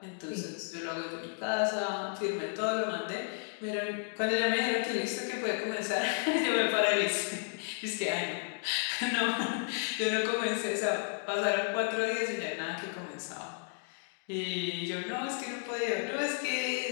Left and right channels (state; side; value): silent; right; 56 dB below the other